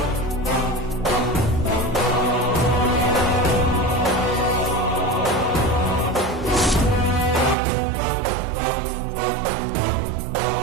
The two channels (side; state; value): left; drops out; at 7.6 s